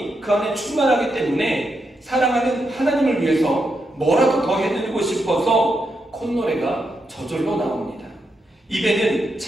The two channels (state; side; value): normal; both; correlation 0.83